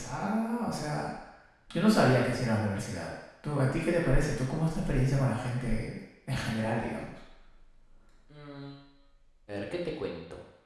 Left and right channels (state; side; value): identical; both; correlation 1.00